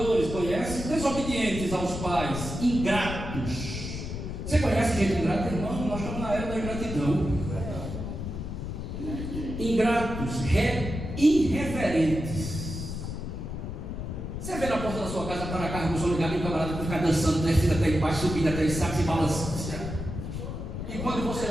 conhece? Desobedientes aos pais, ingratos. Você conhece gente ingrata, irmão? Nós estamos na era da ingratidão. Ingratos, irreverentes. Você vê na porta da sua casa, para carro, com o som ligado, e o camarada ficar dançando, descendo até embaixo, subindo até sabe, se balançando. E quando você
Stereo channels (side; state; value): left; noise; rumble, 6 dB below the sound